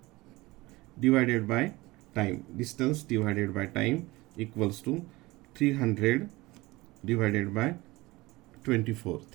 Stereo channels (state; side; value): quieter; left; 20.9 dB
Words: divided by time. Distance divided by time equals to 300 divided by 24.